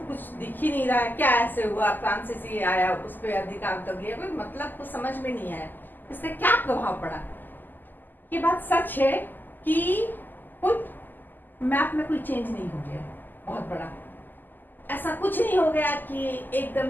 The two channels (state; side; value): late; right; 0.088 ms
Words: कुछ दिख ही नहीं रहा है, क्या ऐसे हुआ, फ्रांसीसी आया उस पर अधिकार कर लिया, कोई मतलब कुछ समझ में नहीं आया, इसका क्या प्रभाव पड़ा। ये बात सच है कि कोई मैप में कोई चेंज नहीं हो गया बहुत बड़ा, ऐसा कुछ नहीं हो गया कि एकदम